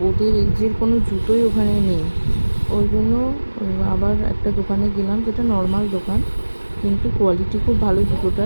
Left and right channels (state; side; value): inverted; both; correlation -1.00